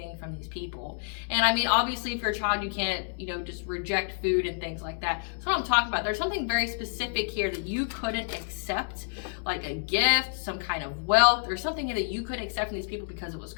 from these people. And I mean, obviously if you're a child, you can't, just reject food and things like that. That's what I'm talking about. There's something very specific here that you couldn't accept, like a gift, some kind of wealth, or something that you couldn't accept from these people because it was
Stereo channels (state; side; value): silent; right; digital silence